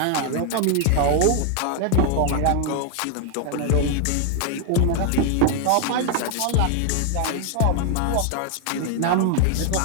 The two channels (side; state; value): both; different; correlation 0.01